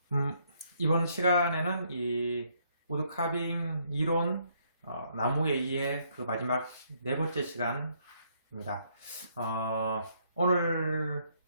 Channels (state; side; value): inverted; both; correlation -0.70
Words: 이번 시간에는 이 우드카빙 이론 나무에 의해 그 마지막 네 번째 시간입니다. 오늘